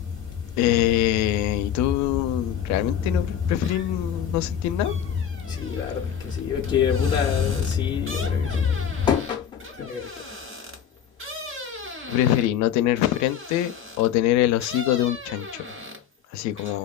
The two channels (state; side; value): quieter; right; 9.4 dB